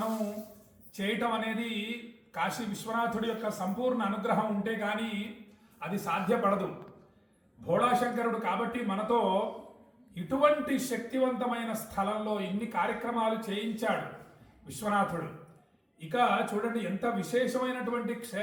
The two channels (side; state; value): both; identical; correlation 1.00